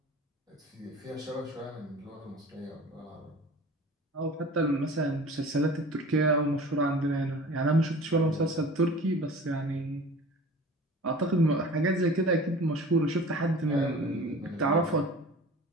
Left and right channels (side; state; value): both; normal; correlation 0.41